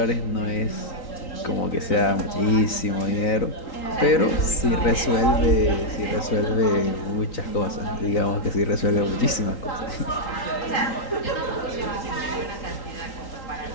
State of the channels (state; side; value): late; right; 3.8 ms